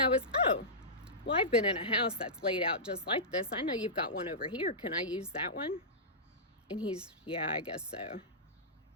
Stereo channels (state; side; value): normal; both; correlation -0.16